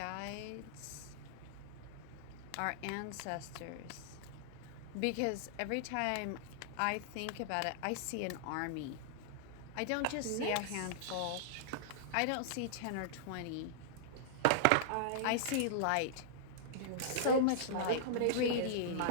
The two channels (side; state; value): both; different; correlation -0.01